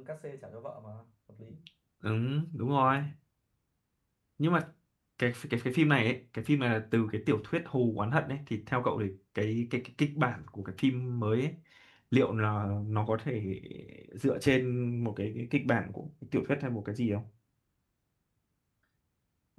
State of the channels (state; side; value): identical; both; correlation 1.00